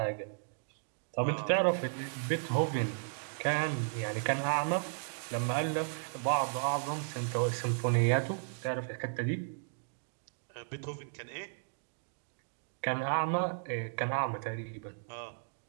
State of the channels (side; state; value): left; silent; digital silence